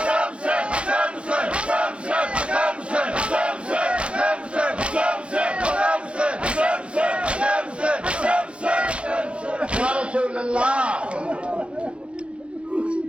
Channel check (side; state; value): left; late; 0.059 ms